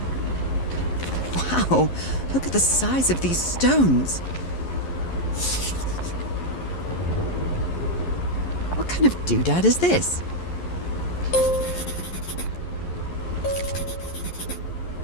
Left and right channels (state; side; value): late; right; 11 ms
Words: Wow, look at the size of these stones. What kind of doodad is this?